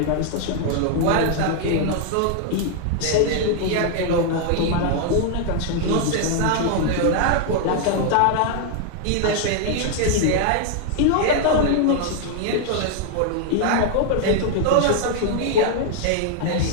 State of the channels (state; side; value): different; both; correlation 0.00